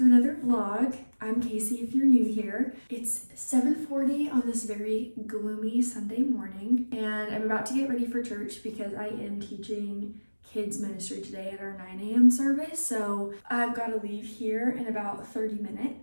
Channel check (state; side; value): inverted; both; correlation -1.00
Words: another vlog. I'm Casey if you're new here. It's 7:40 on this very gloomy Sunday morning and I'm about to get ready for church because I am teaching kids ministry today at our 9 a.m. service. So I've got to leave here in about 30